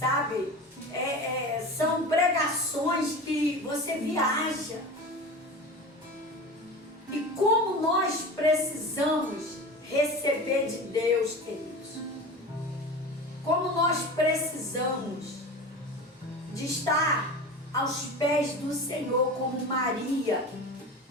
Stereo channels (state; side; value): normal; both; correlation 0.32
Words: São pregações que você viaja. E como nós precisamos receber de Deus, queridos. Como nós precisamos de estar aos pés do Senhor, como Maria,